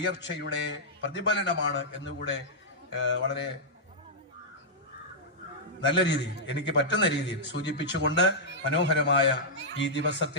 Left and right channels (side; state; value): both; normal; correlation -0.09